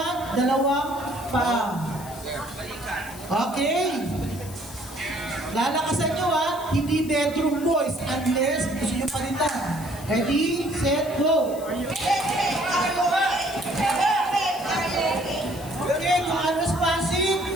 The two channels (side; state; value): left; noise; hiss, 17 dB below the sound